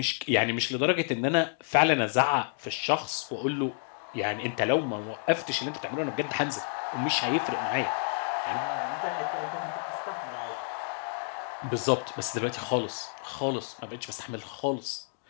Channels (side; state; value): right; silent; 58 dB below the other